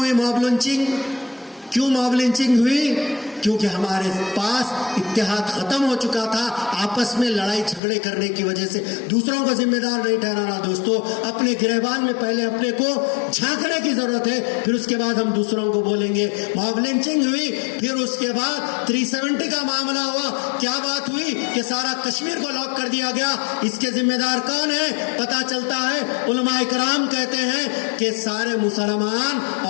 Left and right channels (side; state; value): right; drops out; at 7.8 s